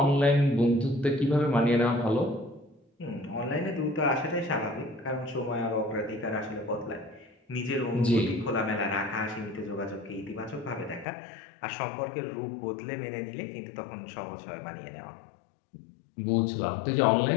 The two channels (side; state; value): right; drops out; at 11.1 s